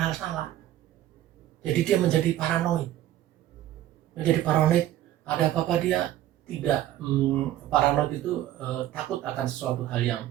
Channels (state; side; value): quieter; left; 13.2 dB